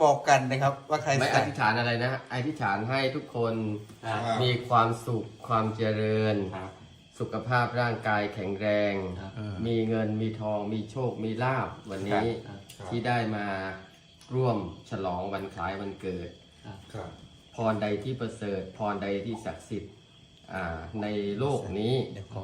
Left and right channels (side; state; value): both; identical; correlation 1.00